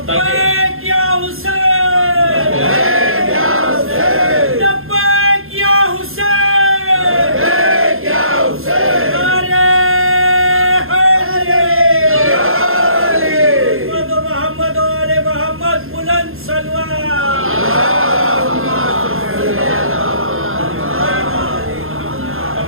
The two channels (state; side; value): late; left; 0.61 ms